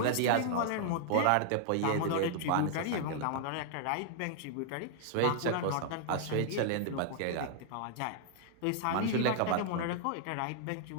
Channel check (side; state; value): both; different; correlation -0.01